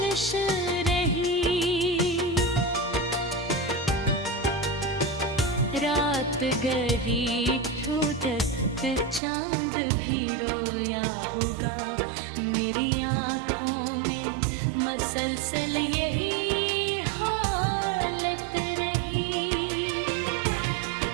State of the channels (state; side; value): drops out; left; at 9.2 s